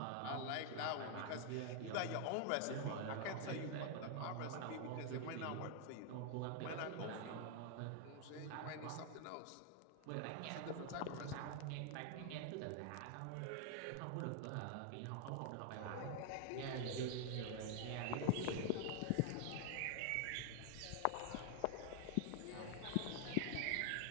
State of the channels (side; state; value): both; different; correlation 0.00